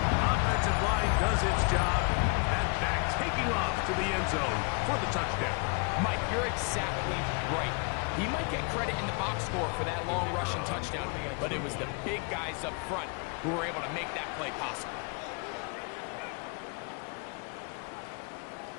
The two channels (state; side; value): quieter; right; 34.7 dB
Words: Offensive line does its job. That back taking off to the end zone for the touchdown. Mike, you're exactly right. He might get credit in the box score for that long rushing touchdown, but it was the big guys up front who were able to make that play possible.